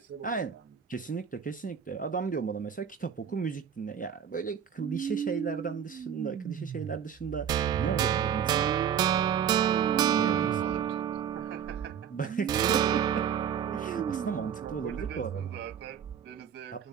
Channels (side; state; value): left; quieter; 8.2 dB